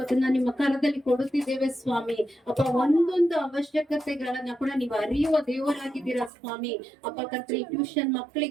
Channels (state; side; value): drops out; left; at 6.3 s